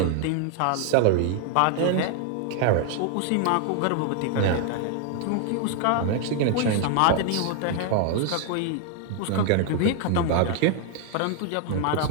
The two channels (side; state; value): both; different; correlation 0.00